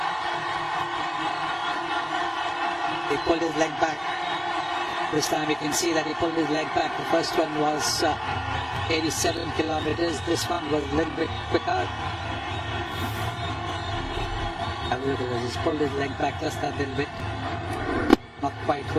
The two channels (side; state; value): both; identical; correlation 1.00